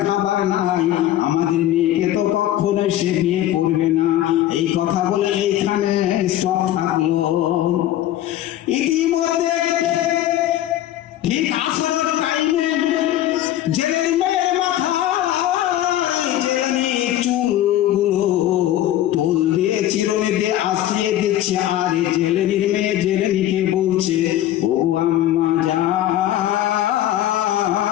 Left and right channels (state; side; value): quieter; right; 13.0 dB